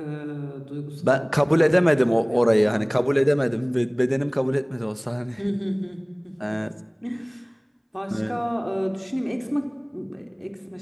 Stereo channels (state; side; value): identical; both; correlation 1.00